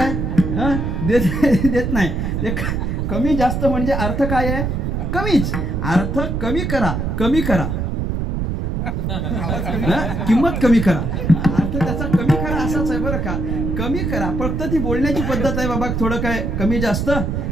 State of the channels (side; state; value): right; noise; rumble, 1 dB below the sound